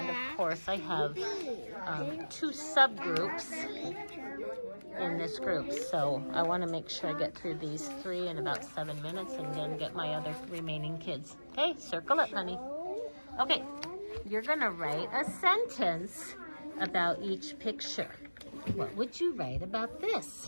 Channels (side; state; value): both; inverted; correlation -1.00